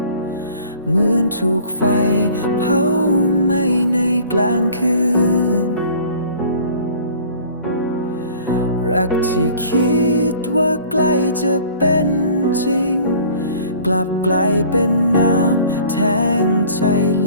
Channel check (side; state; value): both; inverted; correlation -0.49